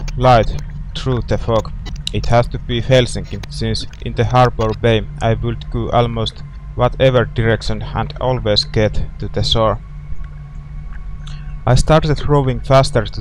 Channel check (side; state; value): both; identical; correlation 1.00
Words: light through the fog. It has to be Helsinki, since in the harbor bay I would go almost whatever direction and always get to the shore. I started rowing faster to